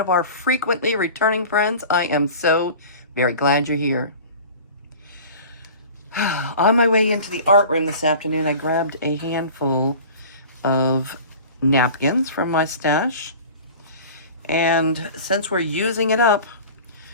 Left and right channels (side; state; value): both; inverted; correlation -0.40